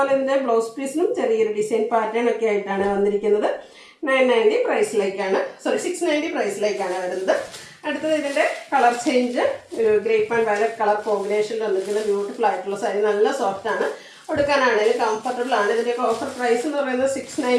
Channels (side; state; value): both; identical; correlation 1.00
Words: ഇതിൻ്റെ ബ്ലൗസ് പീസിലും ചെറിയൊരു ഡിസൈൻ പാറ്റേൺ ഒക്കെ ആയിട്ടാണ് വന്നിരിക്കുന്നത്. 990 പ്രൈസിലേക്കാണ് 690 പ്രൈസിലേക്കാണ് വരുന്നത്. അടുത്തത് ഇതിൻ്റെ കളർ ചേഞ്ച് ഒരു ഗ്രേപ്പ് ആൻഡ് വയലറ്റ് കളർ കോമ്പിനേഷനിൽ വന്നിരിക്കുന്ന ബ്യൂട്ടിഫുൾ ആയിട്ടുള്ള സാരി. നല്ല സോഫ്റ്റാണ്, ഉടുക്കാനാണെങ്കിലും കംഫർട്ടബിൾ ആണ്. ഇതിൻ്റെയൊക്കെ ഓഫർ പ്രൈസ് എന്ന് പറയുന്നത്